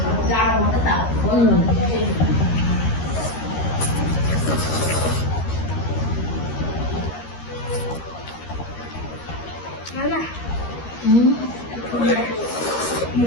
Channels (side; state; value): right; late; 13 ms